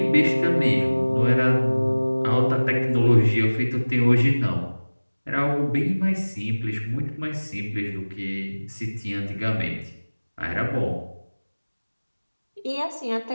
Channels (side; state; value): both; inverted; correlation -1.00